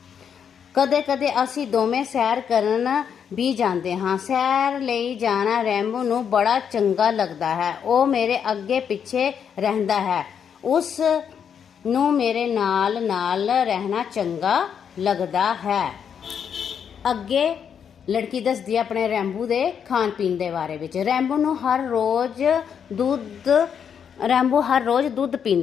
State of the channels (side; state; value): right; quieter; 7.7 dB